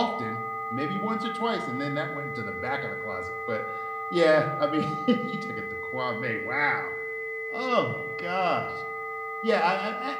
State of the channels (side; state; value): both; identical; correlation 1.00